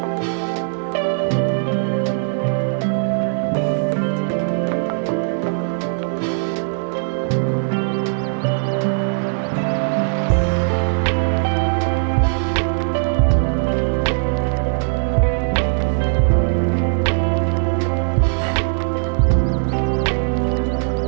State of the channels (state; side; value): silent; left; digital silence